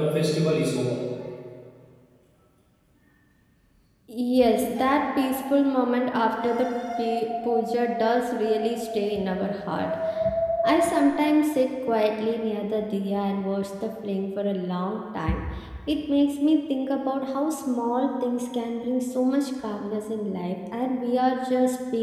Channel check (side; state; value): both; identical; correlation 1.00